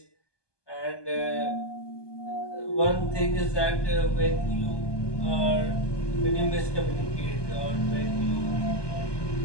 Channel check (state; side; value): late; right; 1.2 ms